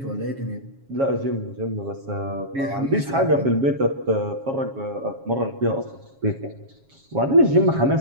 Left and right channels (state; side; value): late; left; 7.3 ms